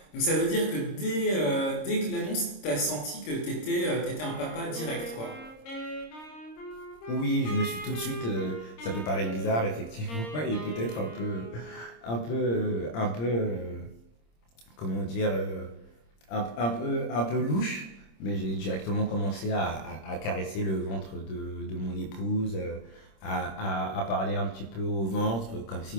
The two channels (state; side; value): late; right; 26 ms